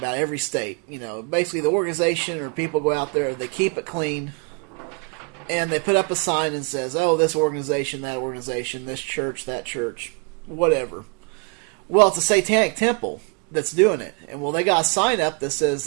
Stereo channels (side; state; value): left; quieter; 33.7 dB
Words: every state. You know, basically the organization or people go out there, they keep it clean, and they put up a sign and says, "Oh, this organization, that organization, this church, that church, whatever." Well, it's a satanic temple that's doing it, and well, they got a sign up that says